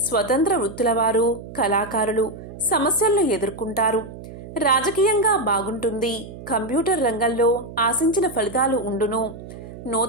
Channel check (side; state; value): right; noise; hum, 14 dB below the sound